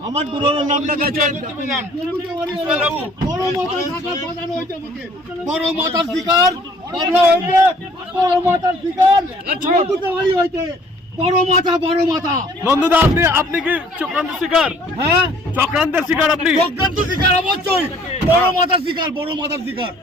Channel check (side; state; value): both; normal; correlation 0.56